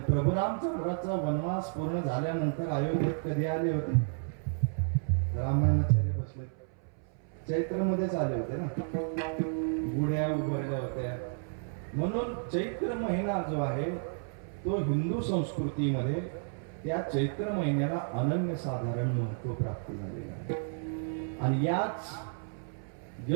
प्रभू रामचंद्राचा वनवास पूर्ण झाल्यानंतर अयोध्येत कधी आले होते? रामायणाचार्य बसले चैत्र मध्येच आले होते ना, गुढ्या उभारल्या होत्या. म्हणून चैत्र महिना जो आहे तो हिंदू संस्कृतीमध्ये त्या चैत्र महिन्याला अनन्यसाधारण महत्व प्राप्त झालेलं आहे. आणि याच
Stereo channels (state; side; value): silent; left; 57 dB below the other